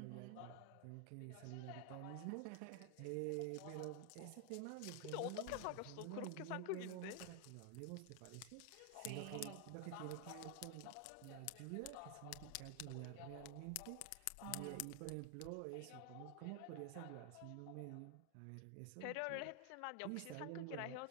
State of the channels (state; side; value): different; both; correlation 0.00